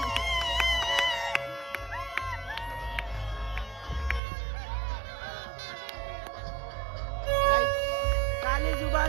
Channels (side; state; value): left; drops out; at 4.2 s